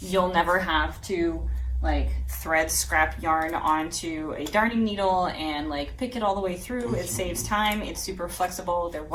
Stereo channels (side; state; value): both; identical; correlation 1.00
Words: you'll never have to like thread scrap yarn onto a darning needle and like pick it all the way through. It saves time. It's super flexible. They're